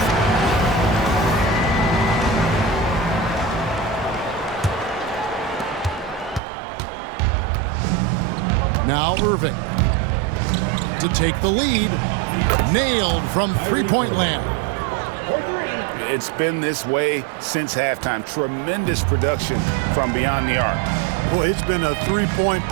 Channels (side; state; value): left; drops out; at 6.4 s